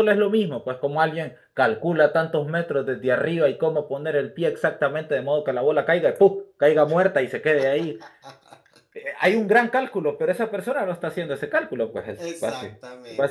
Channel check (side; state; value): both; identical; correlation 1.00